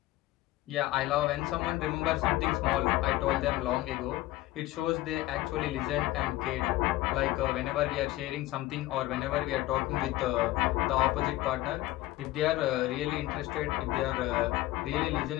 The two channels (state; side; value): quieter; right; 17.0 dB